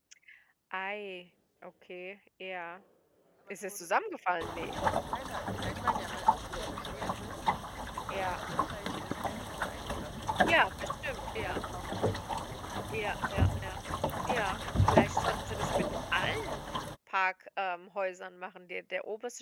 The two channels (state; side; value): identical; both; correlation 1.00